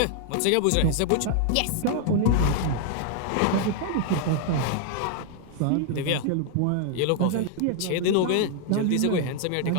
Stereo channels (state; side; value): different; both; correlation 0.00